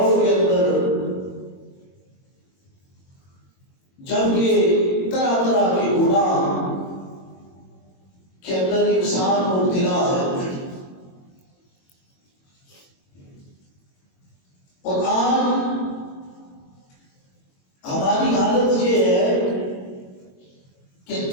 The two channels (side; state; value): right; late; 22 ms